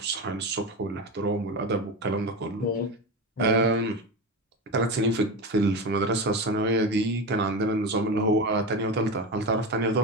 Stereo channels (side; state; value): both; normal; correlation 0.22